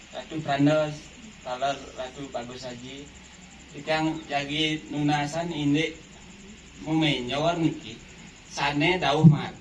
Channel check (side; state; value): both; identical; correlation 1.00